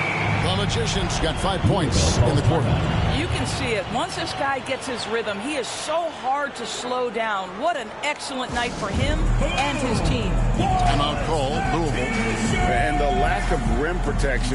The Magician's got 5 points in the quarter. You can see it. Once this guy gets his rhythm, he is so hard to slow down. What an excellent night for him and his team. Timeout call, Louisville. And the lack of rim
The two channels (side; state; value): both; identical; correlation 1.00